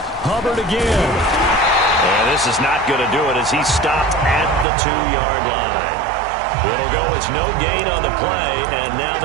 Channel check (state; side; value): drops out; left; at 4.7 s